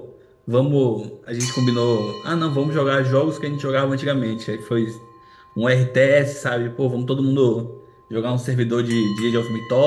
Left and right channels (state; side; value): identical; both; correlation 1.00